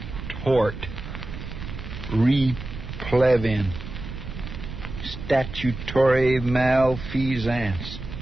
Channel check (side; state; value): right; noise; rumble, 9 dB below the sound